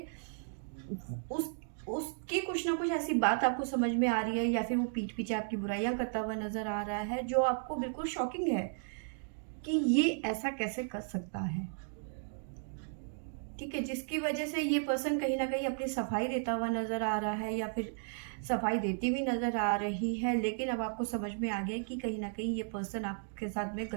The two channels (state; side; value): silent; left; digital silence